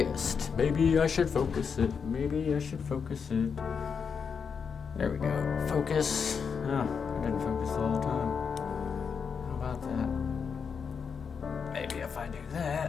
Maybe I should focus it. There we go. Focus. Oh, I didn't focus all the time. How about that? Maybe if I do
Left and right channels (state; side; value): quieter; right; 6.2 dB